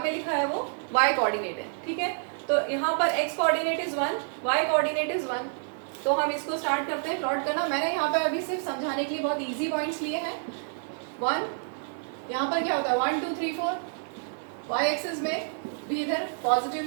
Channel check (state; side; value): silent; left; digital silence